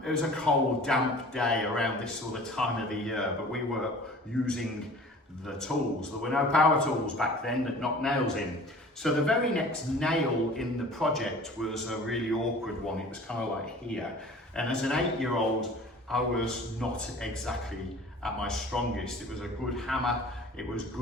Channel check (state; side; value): normal; both; correlation 0.45